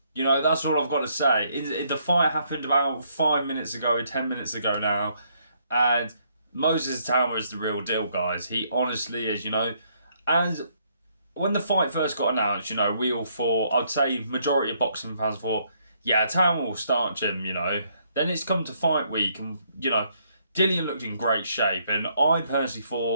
That's all I've got to say. The fight happened about 5 minutes ago, 10 minutes ago now. And Moses Atama is the real deal, guys. He honestly is. And when the fight first got announced, we all thought, I'd say majority of boxing fans thought, yeah, Atama will start Jim. Then it's come to fight week and, Dillian looked in great shape. And I personally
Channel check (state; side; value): inverted; both; correlation -0.70